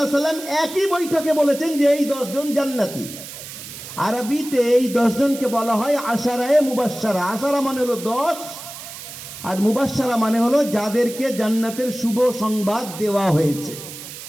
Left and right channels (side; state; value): right; noise; hiss, 12 dB below the sound